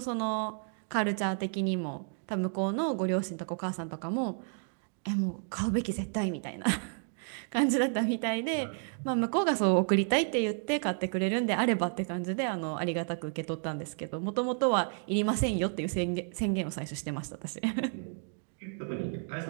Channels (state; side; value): silent; left; 57 dB below the other